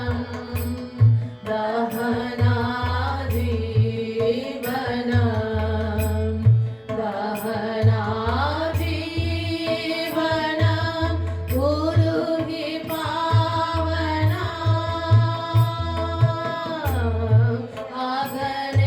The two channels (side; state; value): both; identical; correlation 1.00